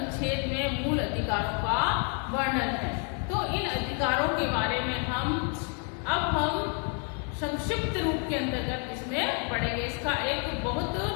में मूल अधिकारों का वर्णन है। तो इन अधिकारों के बारे में हम संक्षिप्त रूप के अंतर्गत इसमें पढ़ेंगे। इसका एक बहुत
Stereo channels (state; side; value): quieter; right; 38.4 dB